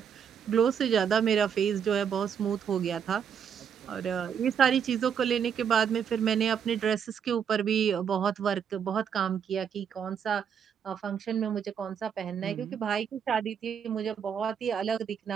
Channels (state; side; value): quieter; left; 7.7 dB